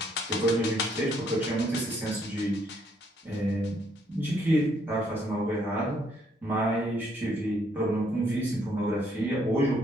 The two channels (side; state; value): both; normal; correlation 0.70